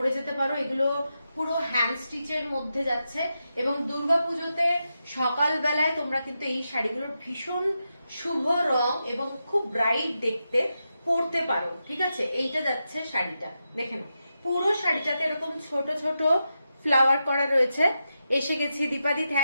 যেতে পারো। এগুলো পুরো হ্যান্ড স্টিচের মধ্যে যাচ্ছে এবং দুর্গাপুজোতে সকালবেলায় তোমরা কিন্তু এই শাড়িগুলোর ভীষণ শুভ রং এবং খুব ব্রাইট দেখতে পরতে পারো, ঠিক আছে। এইটা যাচ্ছে শাড়িটা, দেখে নাও। পুরো শাড়িটাতে এরকম ছোট ছোট ফ্লাওয়ার করা রয়েছে। এসে গেছি দীপাদি,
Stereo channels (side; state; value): both; inverted; correlation -0.88